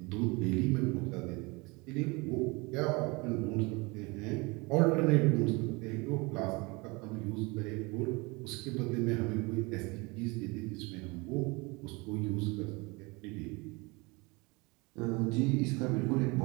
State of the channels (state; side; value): quieter; left; 26.4 dB